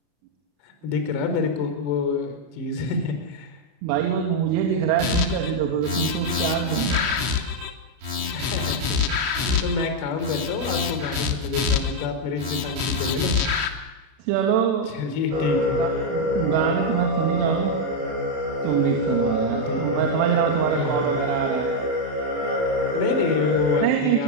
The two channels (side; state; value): left; late; 32 ms